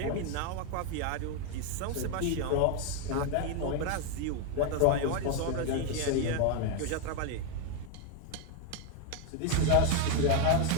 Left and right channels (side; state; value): both; different; correlation 0.01